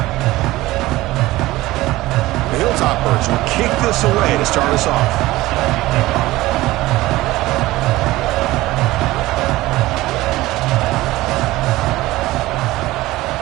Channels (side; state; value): left; quieter; 17.9 dB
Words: Will kick this away to start us off.